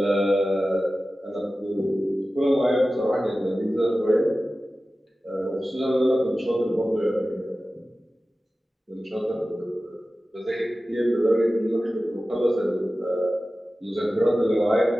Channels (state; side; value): normal; both; correlation 0.95